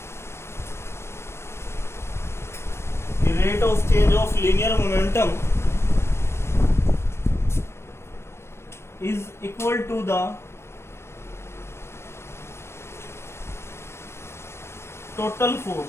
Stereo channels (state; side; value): late; right; 0.12 ms